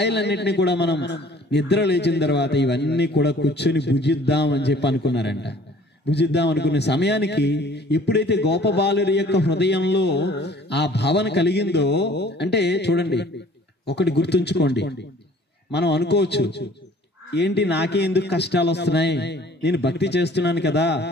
కూడా మనం నిద్ర లేచిన తర్వాత ఇవన్నీ కూడా కూర్చొని భుజిద్దాం అని చెప్పి అనుకున్నారంట. భుజిద్దాం అనుకునే సమయానికి ఎప్పుడైతే గోపబాలుడి యొక్క హృదయంలో ఆ భావన కలిగిందో, అంటే చూడండి, ఒకటి గుర్తుంచుకోండి, మనం అనుకోవచ్చు, ఏంటి నాకే ఎందుకు కష్టాలు వస్తున్నాయి, నేను భక్తి చేస్తున్నాను కదా,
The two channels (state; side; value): normal; both; correlation 0.52